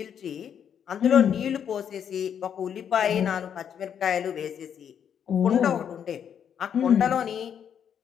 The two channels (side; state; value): right; quieter; 8.4 dB